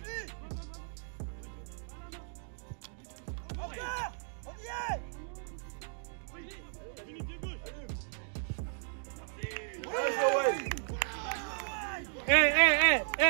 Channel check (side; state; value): left; silent; 55 dB below the other